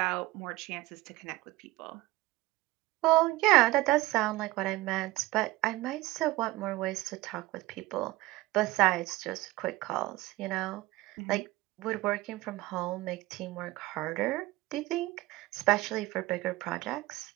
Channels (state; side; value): quieter; left; 19.4 dB